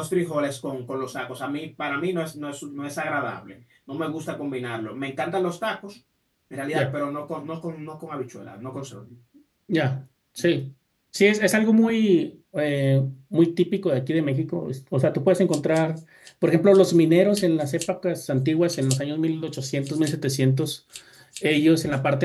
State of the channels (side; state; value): both; identical; correlation 1.00